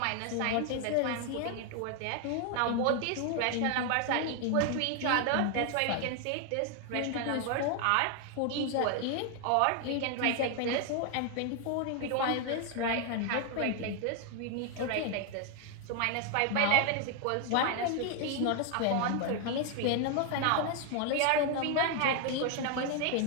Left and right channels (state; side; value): different; both; correlation 0.01